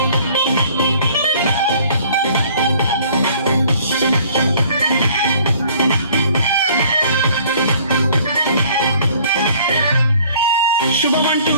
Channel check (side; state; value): both; inverted; correlation -0.55